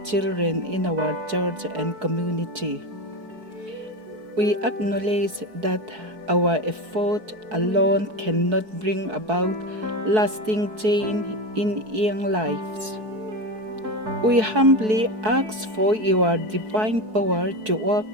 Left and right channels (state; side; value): late; left; 4.6 ms